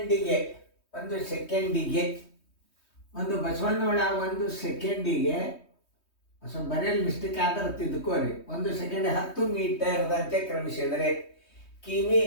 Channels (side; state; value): right; late; 3.2 ms